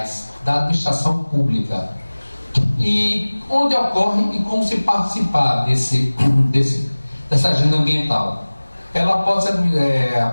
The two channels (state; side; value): inverted; both; correlation -1.00